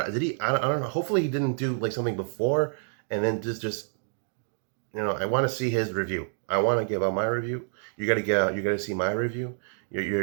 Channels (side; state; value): left; silent; digital silence